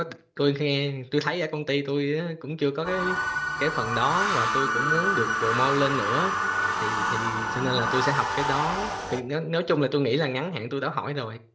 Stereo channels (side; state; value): both; identical; correlation 1.00